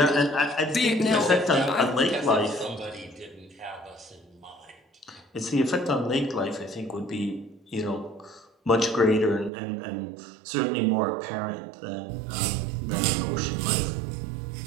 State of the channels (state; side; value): drops out; left; at 9.5 s